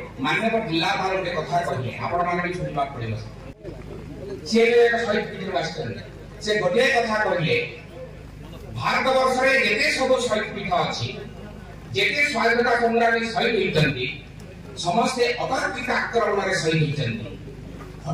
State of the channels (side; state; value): both; identical; correlation 1.00